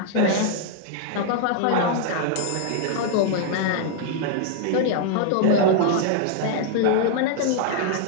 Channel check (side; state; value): both; different; correlation -0.01